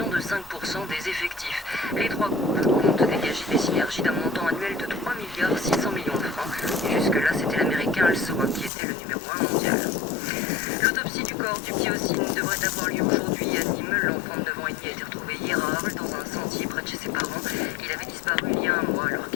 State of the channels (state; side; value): drops out; right; at 8.7 s